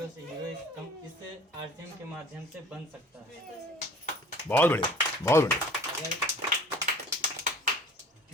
से हीरो इस आरसीएम के माध्यम से बन सकता है। बहुत बढ़िया, बहुत बढ़िया। अगर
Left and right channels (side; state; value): both; normal; correlation 0.48